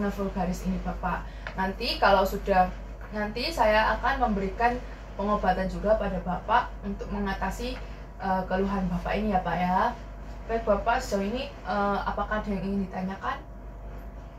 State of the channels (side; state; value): both; identical; correlation 1.00